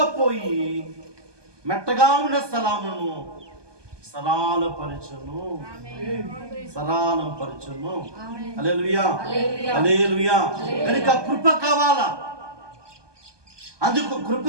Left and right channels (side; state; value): left; late; 1.2 ms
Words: పోయి మెట్టగా ఉన్న స్థలమును సరళపరచును. హల్లెలూయా. హల్లెలూయా. కనుక కృప కావాలా? అందుకు కృప